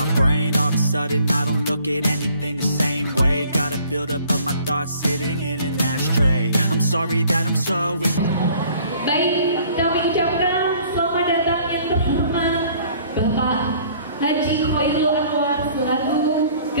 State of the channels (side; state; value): both; inverted; correlation -0.56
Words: brain. All of a sudden I don't look at anything the same way. Got a build up of my thoughts sitting in an ashtray. I'm sorry that I'm so Baik, kami ucapkan selamat datang yang terhormat Bapak Haji Khoirul Anwar selaku